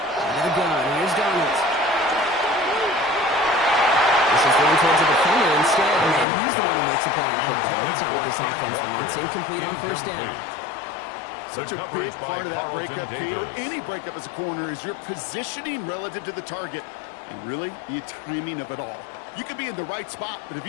of the gun. Here's Donald. This is going towards the defender instead, and he's the one who makes a play. That's not what this offense wants. Incomplete on first down. Such a big part of that breakup, Kate, or any breakup as a corner, is your positioning relative to the target, and really the timing of it all. You could be in the right spot, but if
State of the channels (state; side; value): drops out; right; at 6.2 s